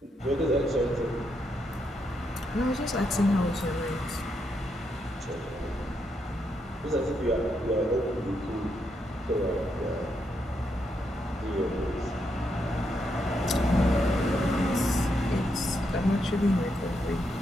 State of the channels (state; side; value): normal; both; correlation 0.80